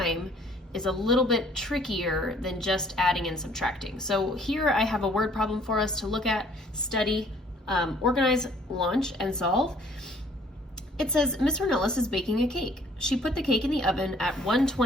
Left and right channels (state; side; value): normal; both; correlation 0.59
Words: is a little bit trickier than just adding and subtracting. So here I have a word problem for us to look at, study, organize, launch, and solve. It says, Miss Ornelas is baking a cake. She put the cake in the oven at